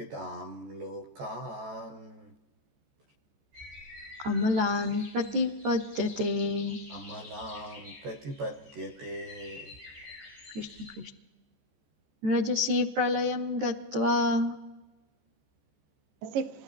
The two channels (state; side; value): late; left; 14 ms